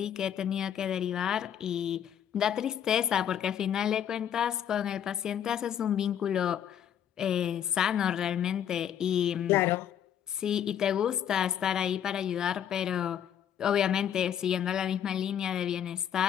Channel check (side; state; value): right; quieter; 9.5 dB